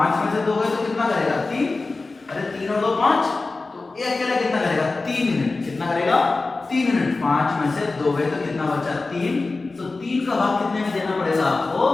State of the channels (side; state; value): right; quieter; 3.6 dB